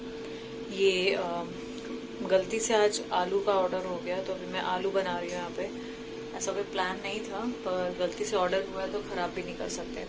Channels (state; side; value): identical; both; correlation 1.00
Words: ये गलती से आज आलू का ऑर्डर हो गया, तो अभी मैं आलू बना रही हूँ यहाँ पे। ऐसा कोई प्लान नहीं था, पर गलती से ऑर्डर हुआ है तो ख़राब भी नहीं कर सकते,